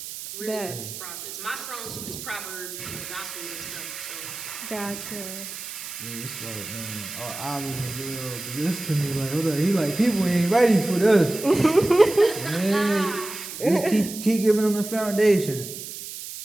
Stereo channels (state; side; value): noise; right; hiss, 10 dB below the sound